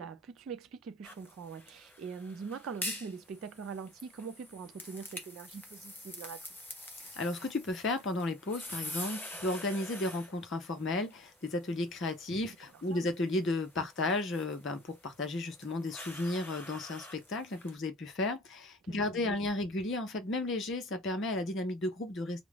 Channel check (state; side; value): normal; both; correlation 0.47